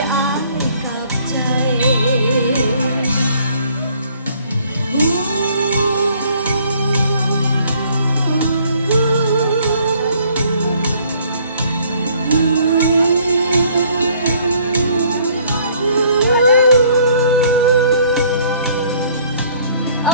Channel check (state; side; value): inverted; both; correlation -0.60